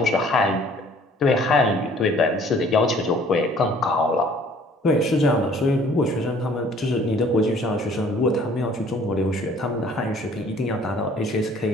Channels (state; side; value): normal; both; correlation 0.56